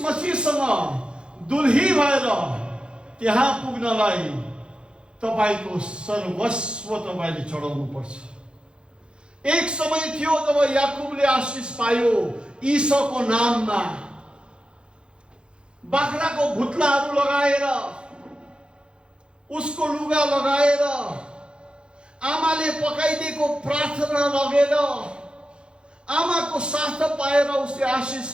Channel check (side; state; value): left; late; 0.054 ms